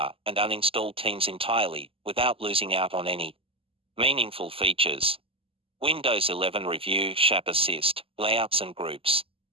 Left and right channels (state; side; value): late; left; 0.27 ms